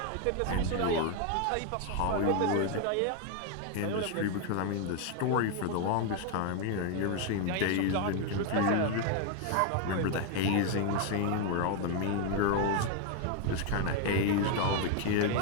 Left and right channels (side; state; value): both; different; correlation 0.01